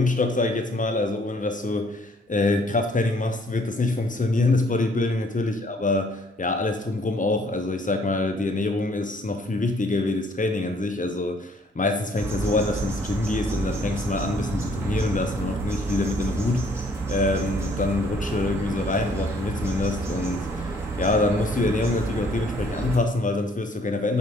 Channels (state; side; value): normal; both; correlation 0.62